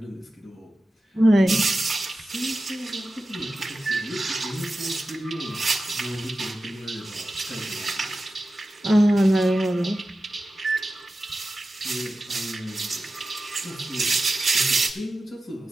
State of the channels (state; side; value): normal; both; correlation 0.94